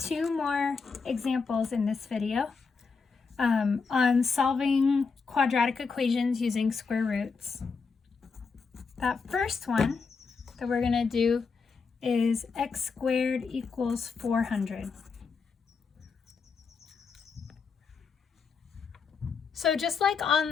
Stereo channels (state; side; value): quieter; right; 5.1 dB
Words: more examples in this video on solving quadratic equations using square roots. That first one that we're going to do is x squared equals 400. So just like